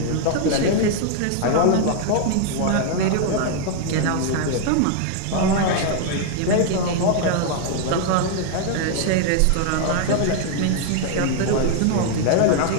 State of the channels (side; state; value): both; different; correlation 0.00